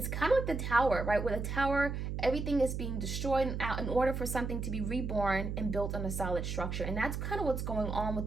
kind of like the tower, right? Where the tower, everything is being destroyed in order for something to be reborn and built on a solid structure. And that's kind of what's going on with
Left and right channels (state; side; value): noise; right; hum, 3 dB below the sound